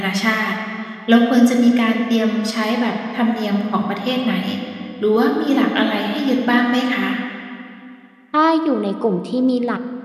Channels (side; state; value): both; identical; correlation 1.00